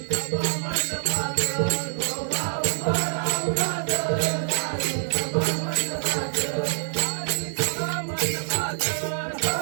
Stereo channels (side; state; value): left; silent; digital silence